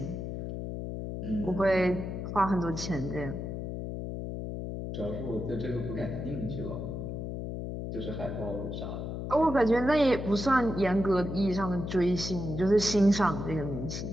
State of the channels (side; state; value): left; noise; hum, 5 dB below the sound